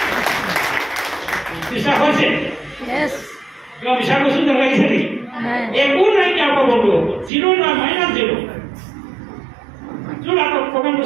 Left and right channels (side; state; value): left; drops out; at 7.3 s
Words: বিশ্বাস হৈছে কিবা বিশ্বাস কৈছোঁ যেন লাগিছে নেকি একো নাই কি আকৌ বন্ধু হ'ব 0 নাই -0 যোন আকৌ প্ৰগ্ৰামটো